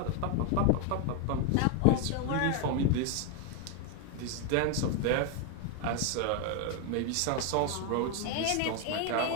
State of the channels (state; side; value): different; both; correlation 0.01